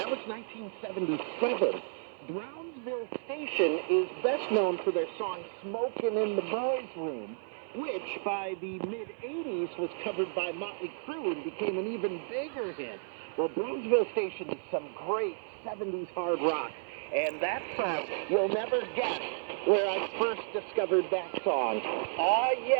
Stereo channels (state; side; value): silent; left; digital silence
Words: was 1977. Brownsville Station is best known for their song Smokin' in the Boys' Room, which by the mid-'80s was covered by Motley Crue and became an even bigger hit. Well, Brownsville Station is some great 70s hard rock, and that song, you'll never guess where I first discovered that song. Ah,